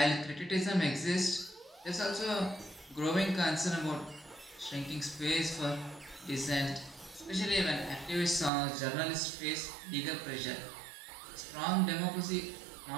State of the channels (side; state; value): left; drops out; at 8.5 s